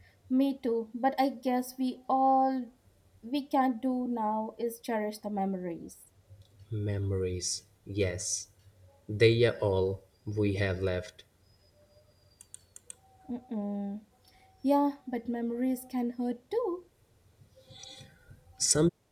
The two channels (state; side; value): identical; both; correlation 1.00